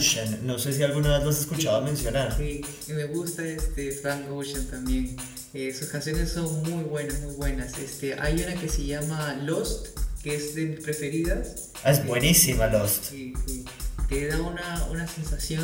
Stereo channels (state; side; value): identical; both; correlation 1.00